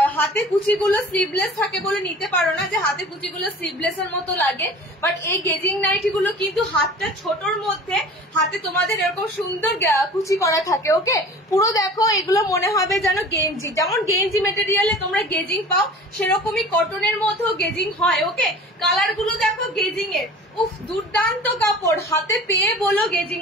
হাতে কুচিগুলো স্লিভলেস থাকে বলে নিতে পারো না, যে হাতে কুচিগুলো স্লিভলেস এর মতো লাগে, বাট এই গেজিং নাইটি গুলো কিন্তু হাতটা ছোটর মধ্যে হাতে তোমাদের এরকম সুন্দর কুচি করা থাকে। ওকে, পুরো দেখো এগুলো মনে হবে যেন গেঞ্জি, যেমন গেঞ্জি মেটেরিয়ালে তোমরা গেজিং পাও সেরকমই কটনের মধ্যেও গেজিং হয়। ওকে, কালার গুলো দেখো গেজিং এর, উফ দুর্দান্ত কাপড়, হাতে পেয়ে বলো গেজিং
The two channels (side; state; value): both; normal; correlation 0.42